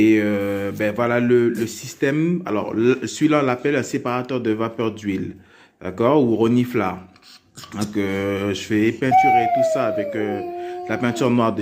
voilà le système. Alors, celui-là, on l'appelle un séparateur de vapeur d'huile. D'accord? Ou reniflard. Donc, je vais peinturer tout ça avec la peinture noire de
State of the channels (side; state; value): both; identical; correlation 1.00